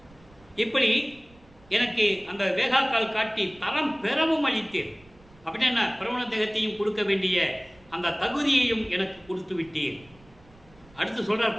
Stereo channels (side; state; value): right; noise; rumble, 27 dB below the sound